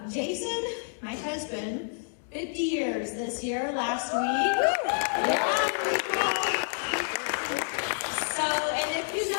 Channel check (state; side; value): silent; right; digital silence